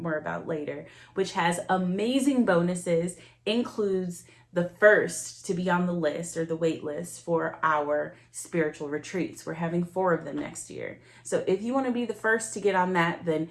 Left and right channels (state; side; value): identical; both; correlation 1.00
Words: about later, which has amazing bonuses, includes the first to be on the list or the wait list for our spiritual retreats. We're having 4 of them next year. So if you want to be the first to get on that, then